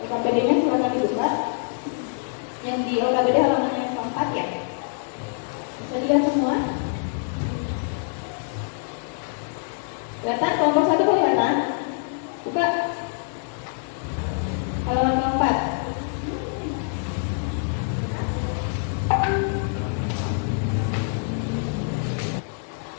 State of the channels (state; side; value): silent; right; 62 dB below the other